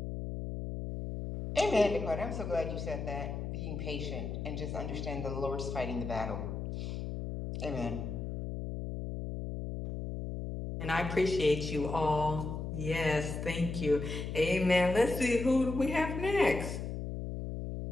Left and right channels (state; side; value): noise; left; hum, 5 dB below the sound